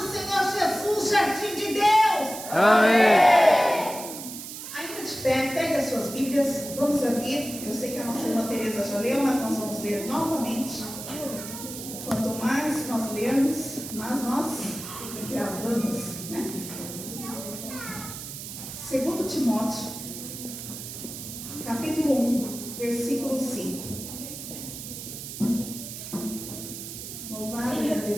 Senhor Jesus, jardim de Deus. Amém. Ainda de pé, pegue as suas Bíblias, vamos abrir. Eu sei que a nossa irmã Tereza já leu, mas nós vamos ler novamente. Quanto mais nós lermos, mais nós gravamos, né? 2 Timóteo, capítulo 1, versículo 5. Louvado e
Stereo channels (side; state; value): right; noise; hiss, 10 dB below the sound